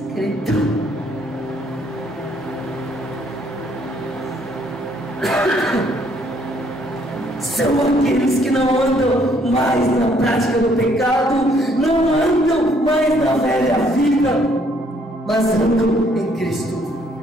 São aqueles que não andam mais na prática do pecado, não andam mais na velha vida, mas andam em Cristo.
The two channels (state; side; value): normal; both; correlation 0.66